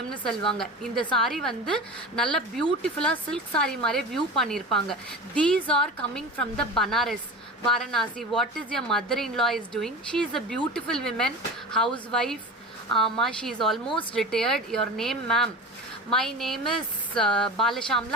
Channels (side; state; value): both; normal; correlation 0.32